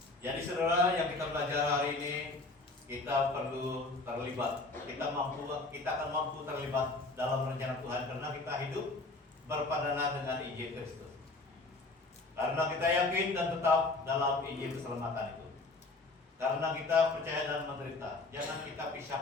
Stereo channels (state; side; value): quieter; right; 3.3 dB